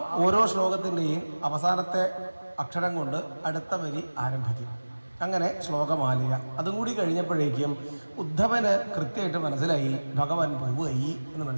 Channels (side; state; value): both; inverted; correlation -1.00